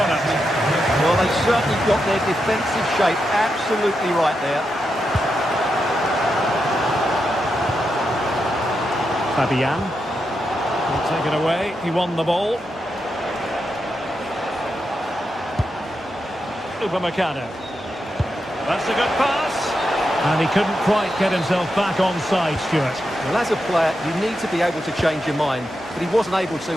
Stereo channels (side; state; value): both; normal; correlation 0.86